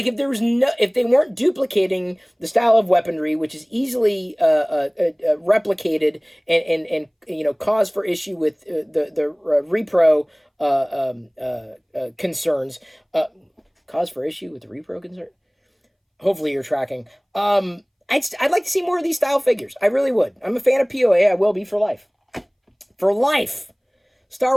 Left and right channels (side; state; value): both; identical; correlation 1.00